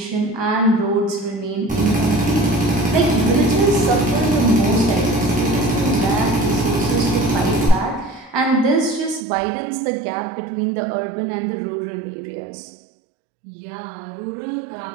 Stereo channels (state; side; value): drops out; left; at 9.2 s